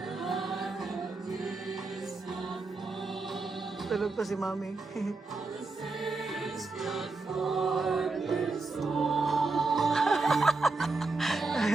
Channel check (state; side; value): quieter; left; 3.6 dB